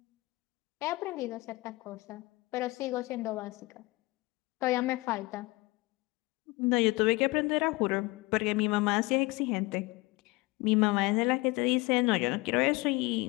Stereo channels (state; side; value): quieter; right; 22.9 dB